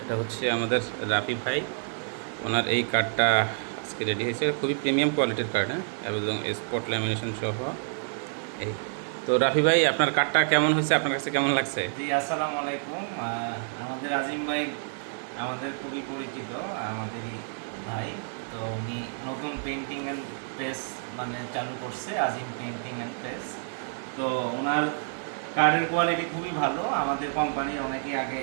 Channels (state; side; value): silent; left; digital silence